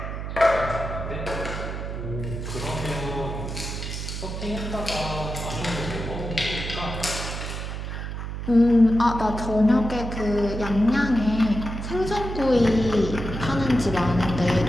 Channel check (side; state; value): right; noise; hum, 6 dB below the sound